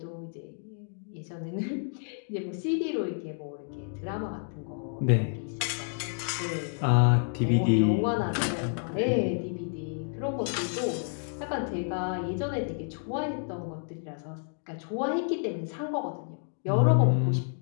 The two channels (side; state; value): right; silent; 58 dB below the other